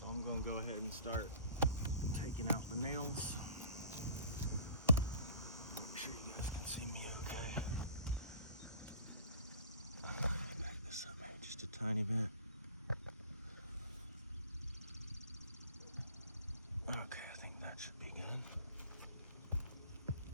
I'm gonna go ahead and start taking out the nails. Make sure you guys can see me okay. Back this up maybe just a tiny bit. Okay, I think that should be good.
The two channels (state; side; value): inverted; both; correlation -0.47